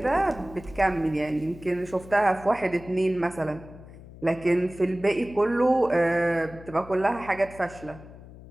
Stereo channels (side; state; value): left; noise; hum, 18 dB below the sound